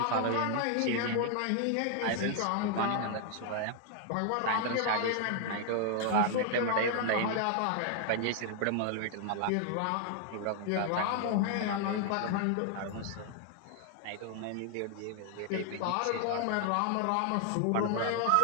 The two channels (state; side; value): different; both; correlation 0.00